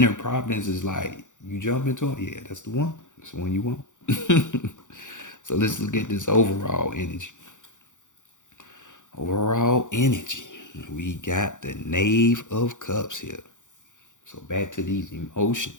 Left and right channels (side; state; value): right; late; 0.86 ms